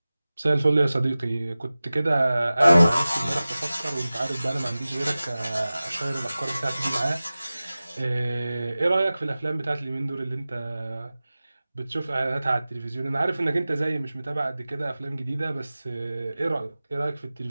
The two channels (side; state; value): both; inverted; correlation -0.97